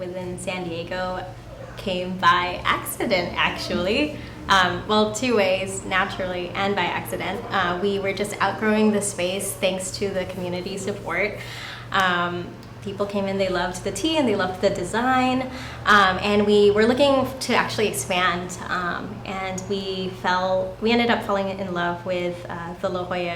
San Diego came by accident, actually. Well, two ways, naturally and by accident. We were just outgrowing the space thanks to the community support. People came in, they loved the tea and they loved the design, and we were looking to actually expand, and we ended up falling in love with the La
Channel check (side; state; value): both; identical; correlation 1.00